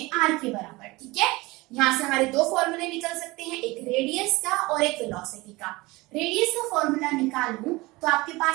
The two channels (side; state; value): left; quieter; 21.9 dB